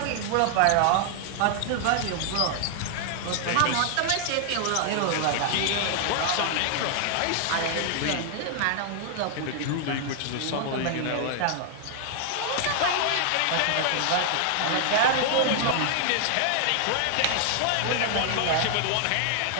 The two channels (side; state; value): both; different; correlation 0.00